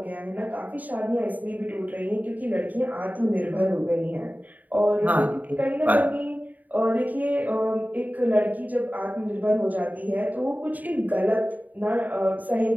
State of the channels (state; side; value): late; left; 0.079 ms